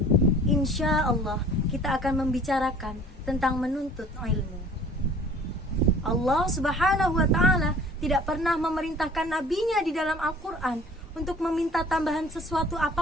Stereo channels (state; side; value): normal; both; correlation 0.50